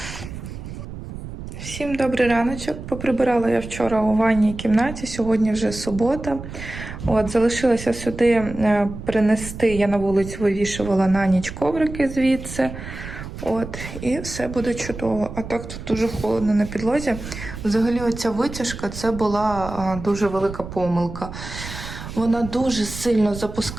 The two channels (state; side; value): noise; right; rumble, 10 dB below the sound